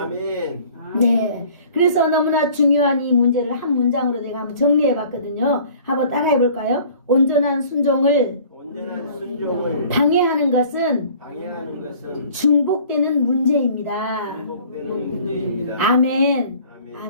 아멘. 네, 그래서 너무나 중요한 이 문제를 한 문장으로 제가 한번 정리해 봤거든요. 한번 따라해 볼까요? 온전한 순종을 방해하는 것은 중복되는 문제입니다. 아멘.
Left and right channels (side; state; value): both; inverted; correlation -0.50